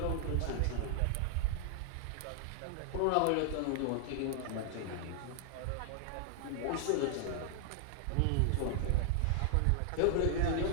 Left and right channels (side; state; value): both; different; correlation 0.00